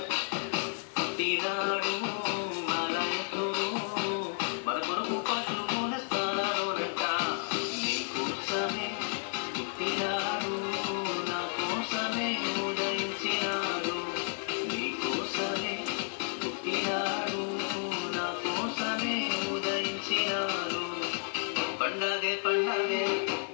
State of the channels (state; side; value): silent; right; 57 dB below the other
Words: పుట్టినాడు మనయసుడు మన కొరకు పశువుల స్థానాలోనట నీ కోసమే పుట్టినాడు నా కోసమే ఉదయించినాడు నీ కోసమే పుట్టినాడు నా కోసమే ఉదయించినాడు పండగే పండగే